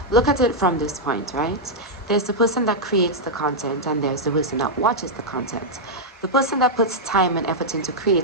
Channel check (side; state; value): both; normal; correlation -0.04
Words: Look at it from this point, right? There's the person that creates the content and there's the person that watches the content. The person that puts time and effort into